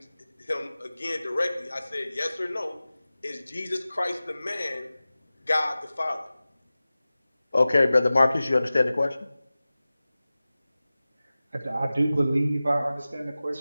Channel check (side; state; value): both; inverted; correlation -0.97